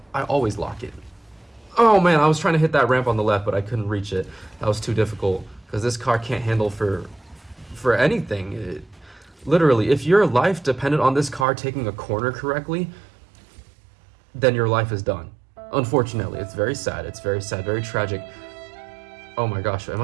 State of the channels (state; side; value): drops out; left; at 11.5 s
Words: I always lock in. Oh man, I was trying to hit that ramp on the left, but I couldn't reach it. That was too difficult because this car can't handle for anything. Literally, if your life depended on this car taking a corner correctly, then your life is done. Unfortunately, it's very sad. It's very sad, very tragic. Oh my gosh, am